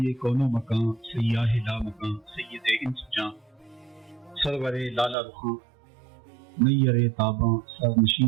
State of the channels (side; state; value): left; drops out; at 5.2 s